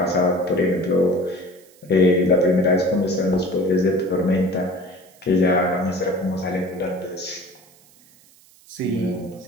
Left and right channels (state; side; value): noise; right; hiss, 28 dB below the sound